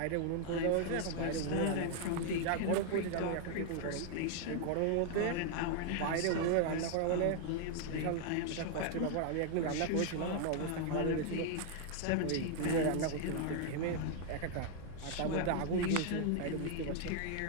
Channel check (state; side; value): different; both; correlation 0.00